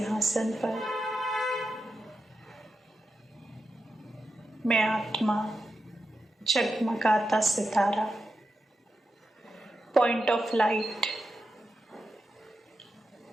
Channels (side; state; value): both; normal; correlation 0.89